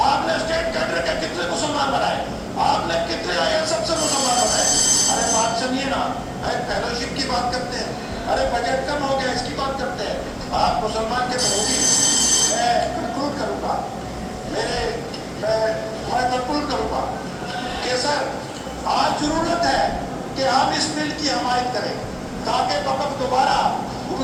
आपने स्टेट कैडर के कितने मुसलमान बनाए? आपने कितने आईएएस अफसर मुसलमान बनाए? अरे बात सुनिए ना, अरे फेलोशिप की बात करते हैं, अरे बजट कम हो गया इसकी बात करते हैं। आप मुसलमान के विरोधी। मैं कंक्लूड करूंगा, मैं कंक्लूड करूंगा कि सर आज जरूरत है कि हम इस बिल की हमायत करें ताकि वक़्त दोबारा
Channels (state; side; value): identical; both; correlation 1.00